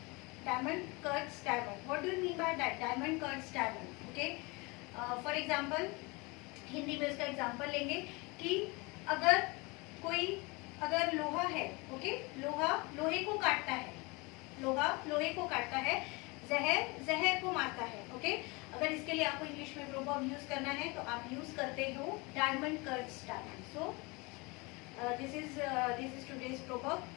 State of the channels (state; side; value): quieter; right; 26.6 dB